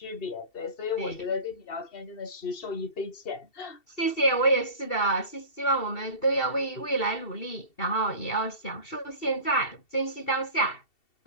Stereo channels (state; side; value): late; right; 2.7 ms